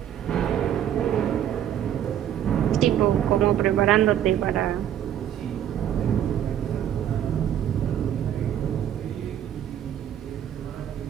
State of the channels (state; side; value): quieter; left; 10.4 dB